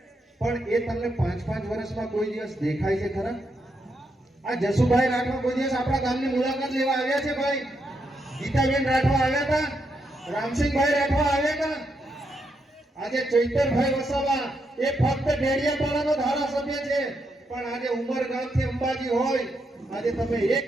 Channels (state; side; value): normal; both; correlation 0.81